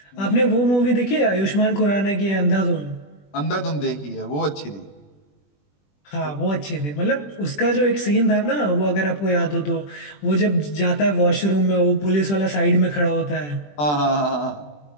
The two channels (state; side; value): late; right; 20 ms